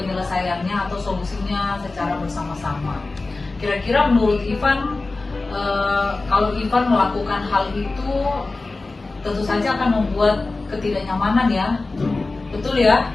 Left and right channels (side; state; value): right; quieter; 3.4 dB